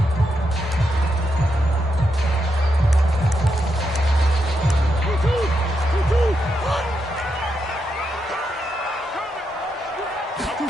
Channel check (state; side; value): normal; both; correlation 0.83